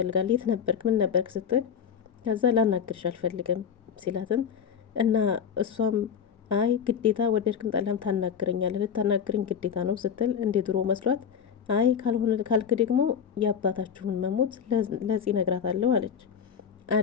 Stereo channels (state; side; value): quieter; right; 7.5 dB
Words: የት ነበርክ ምን ነበርክ ስትል ከዛ ላናግርሽ አልፈልግም ሲላትም እና እሷም አይ ግዴታ ወደድክም ጠላም ታናግረኛለህ፣ ልታናግረኝ ግዴታ ነው ስትል እንደ ድሮ መስሏት አይ ካልሆነ ካልክ ደግሞ የአባታችሁን መሞት ለዚህ ነግራታለሁ አለች።